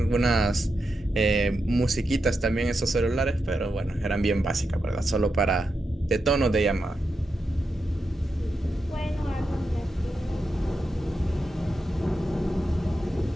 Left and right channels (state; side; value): normal; both; correlation 0.87